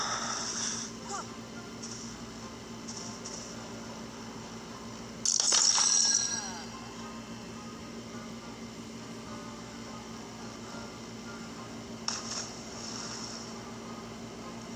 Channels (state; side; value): identical; both; correlation 1.00